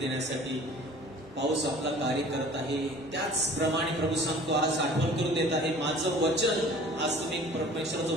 पाऊस आपला कार्य करत आहे. त्याचप्रमाणे प्रभू सांगतो, आज आठवण करून देत आहे, माझं वचन, आज तुम्ही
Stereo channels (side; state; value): both; normal; correlation 0.47